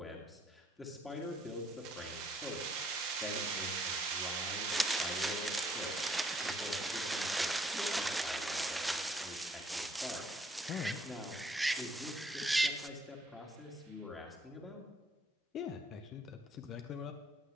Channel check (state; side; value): normal; both; correlation 0.67